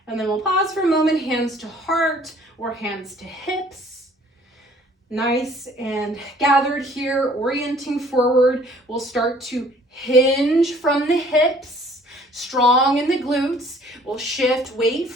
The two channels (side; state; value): both; normal; correlation 0.56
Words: And then we'll pause for a moment, hands to heart or hands to hips. Nice and gathered here, orienting forward. We'll start to hinge from the hips, strong in the glutes. We'll shift weight